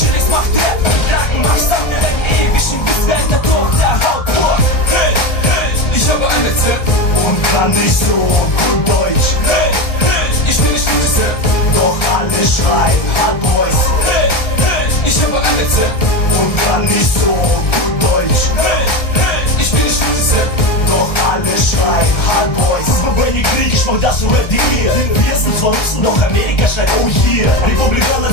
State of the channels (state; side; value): late; right; 1.3 ms